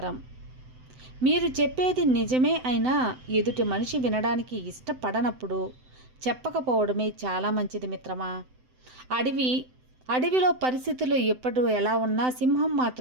మీరు చెప్పేది నిజమే అయినా ఎదుటి మనిషి వినడానికి ఇష్టపడనప్పుడు చెప్పకపోవడమే చాలా మంచిది మిత్రమా. అడవిలో పరిస్థితులు ఎప్పుడు ఎలా ఉన్నా సింహం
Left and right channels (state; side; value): late; left; 7.8 ms